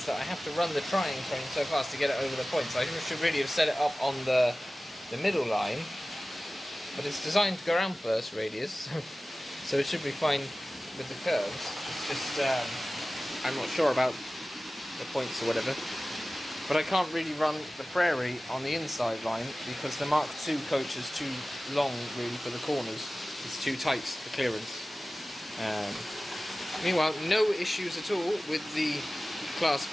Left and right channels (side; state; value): both; normal; correlation 0.97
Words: that I have to run the Triang train so fast to get it over the points. I should really have set it up on the middle line. But it's designed to go around first radius, so it should be fine with the curves. It's just, I'm not sure about the points or whatever. But I can't really run the Prairie on the inside line because the Mark II coach is too long really for the corners. It's too tight, the clearance. Meanwhile, no issues at all with the Class